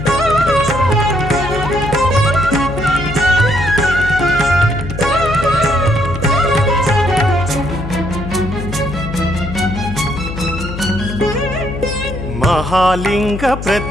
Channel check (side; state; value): left; noise; hum, 7 dB below the sound